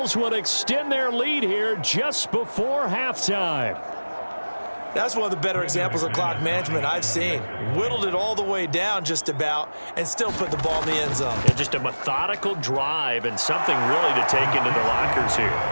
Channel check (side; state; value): both; inverted; correlation -1.00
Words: will extend their lead here just before halftime. That's one of the better examples of clock management I've seen. Whittled it all the way down just about and still put the ball in the end zone. And just a methodical drive and something really to take into the lockers